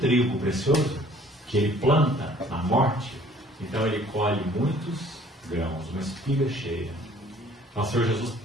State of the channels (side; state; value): both; normal; correlation 0.55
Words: precioso que Ele planta na morte, então Ele colhe muitos grãos, uma espiga cheia. Nosso Senhor Jesus,